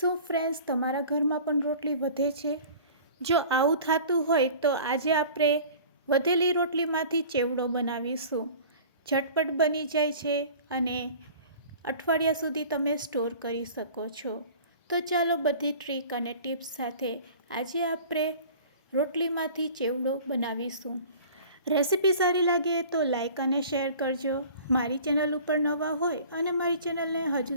ફ્રેન્ડ્સ તમારા ઘરમાં પણ રોટલી વધે છે? જો આવું થતું હોય તો આજે આપણે વધેલી રોટલીમાંથી ચેવડો બનાવીશું। ઝટપટ બની જાય છે અને અઠવાડિયા સુધી તમે સ્ટોર કરી શકો છો। તો ચાલો બધી ટ્રીક અને ટિપ્સ સાથે આજે આપણે રોટલીમાંથી ચેવડો બનાવીશું। રેસીપી સારી લાગે તો લાઈક અને શેર કરજો। મારી ચેનલ ઉપર નવા હોય અને મારી ચેનલને હજુ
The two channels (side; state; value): both; inverted; correlation -0.44